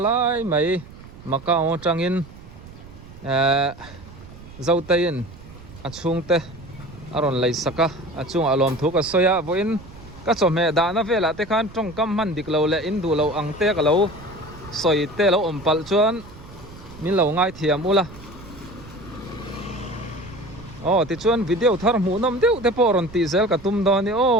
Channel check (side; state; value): right; noise; rumble, 18 dB below the sound